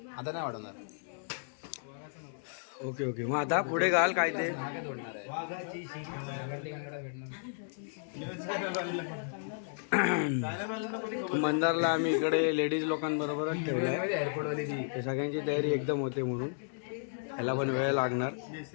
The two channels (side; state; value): right; silent; digital silence